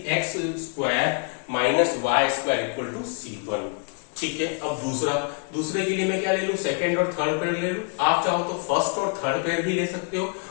x square minus y square equal to c1, ठीक है। अब दूसरे के लिए मैं क्या ले लूं, सेकेंड और थर्ड पेयर ले लूं। आप चाहो तो फर्स्ट और थर्ड पेयर भी ले सकते हो,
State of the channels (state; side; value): quieter; right; 39.2 dB